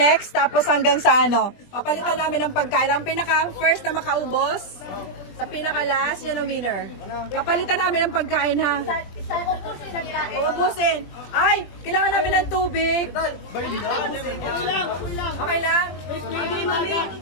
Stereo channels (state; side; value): late; right; 20 ms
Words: tapos hanggang sa ano, papalitan namin ng pagkain. Ang pinaka-first na makaubos, sa pinaka-last, yan ang winner. Papalitan namin ng pagkain, ha? Uubusin. Ay, kailangan namin ng tubig. Okay lang?